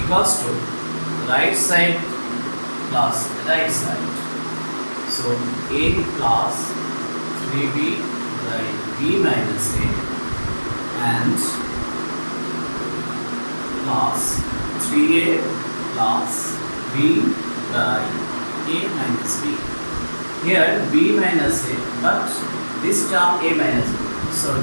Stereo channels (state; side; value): inverted; both; correlation -1.00